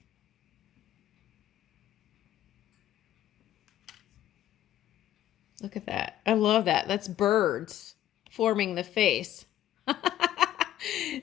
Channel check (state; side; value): quieter; right; 12.6 dB